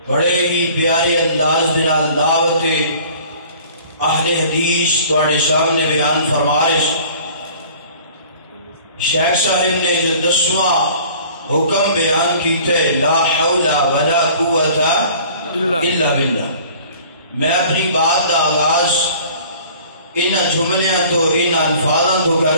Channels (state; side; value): inverted; both; correlation -0.49